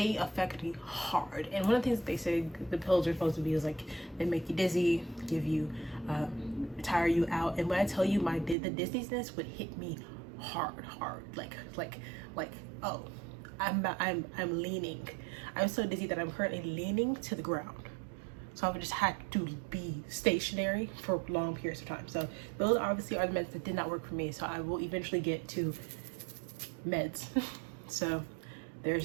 affect me hard. And one of the things that they say the pills are supposed to be is like, they make you dizzy, give you, tire you out. And when I tell you the dizziness would hit me hard, like, oh, I'm leaning. I'm so dizzy that I'm currently leaning to the ground. So I would just have to be stationary for long periods of time. So those obviously are the meds that did not work for me. So I will eventually get to meds. So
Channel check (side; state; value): left; drops out; at 8.6 s